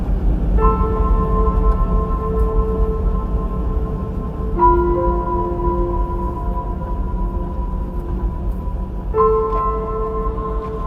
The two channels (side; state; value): both; identical; correlation 1.00